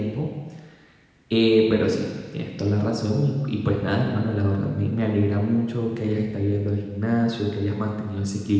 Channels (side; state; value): both; identical; correlation 1.00